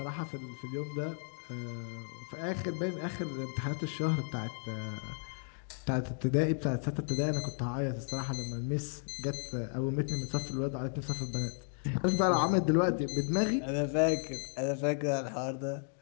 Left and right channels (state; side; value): silent; right; 55 dB below the other